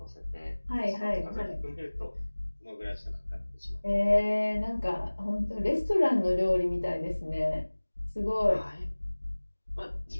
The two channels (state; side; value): inverted; both; correlation -1.00